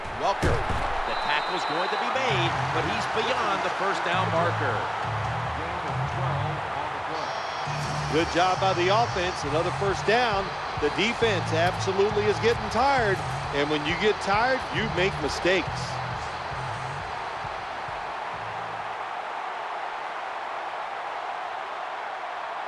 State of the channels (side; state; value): both; identical; correlation 1.00